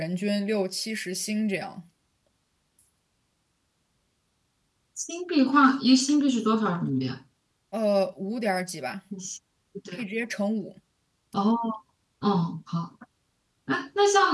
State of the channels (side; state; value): both; identical; correlation 1.00